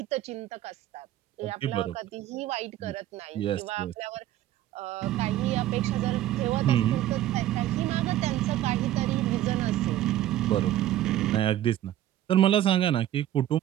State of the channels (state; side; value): quieter; left; 13.1 dB